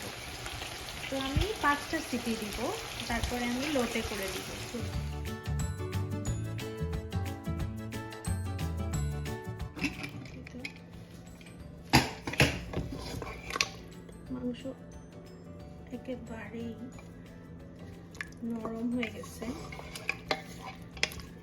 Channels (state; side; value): identical; both; correlation 1.00